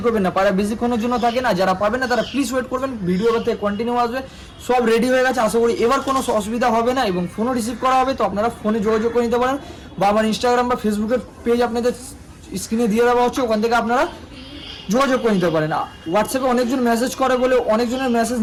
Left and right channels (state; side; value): identical; both; correlation 1.00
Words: করবেন না। পায়রা বেশিক্ষণের জন্য থাকে না, যারা পাবেন না তারা প্লিজ ওয়েট করবেন। ভিডিও থেকে কন্টিনিউ আসবে, সব রেডি হয়ে গেছে, আশা করি এবার কোনো অসুবিধা হবে না এবং ফোনও রিসিভ করা হবে। তো আপনারা ফোনে যোগাযোগ করে নিতে পারেন, বা আমার ইনস্টাগ্রাম বা ফেসবুকের পেজ আপনাদের স্ক্রিনে দিয়ে দেওয়া হচ্ছে, ওখান থেকে আপনারা যোগাযোগ করে নিতে পারেন। হোয়াটসঅ্যাপে অনেকজন মেসেজ করে বলে অনেকজনের মেসেজ